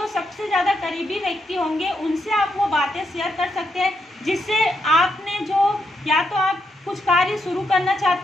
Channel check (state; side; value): normal; both; correlation 0.80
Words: सबसे ज़्यादा करीबी व्यक्ति होंगे, उनसे आप वो बातें शेयर कर सकते हैं, जिससे आपने जो, या तो आप कुछ कार्य शुरू करना